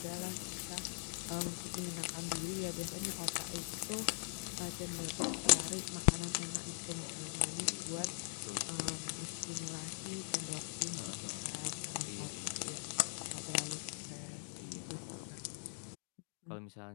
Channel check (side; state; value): right; silent; digital silence